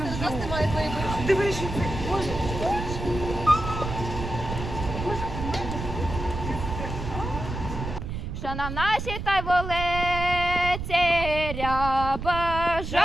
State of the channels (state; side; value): noise; right; rumble, 6 dB below the sound